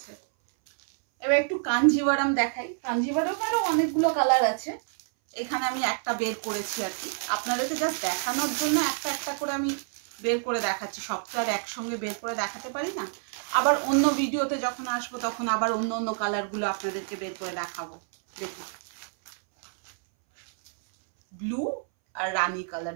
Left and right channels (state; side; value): silent; left; 60 dB below the other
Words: এবার একটু কাঞ্জিভারাম দেখাই, কাঞ্জিভারামেরও অনেকগুলো কালার আছে, এখানে আমি একটা বের করেছি আর কি, আপনাদেরকে জাস্ট দেখানোর জন্য একটা একটা করে আমি বের করে দেখাচ্ছি। সব তো আর একসঙ্গে বের করে দেখাতে পারি না, আবার অন্য ভিডিওতে যখন আসবো তখন আবার অন্য অন্য কালারগুলো আপনাদেরকে বের করে দেখাবো। দেখুন ব্লু আর রানী কালার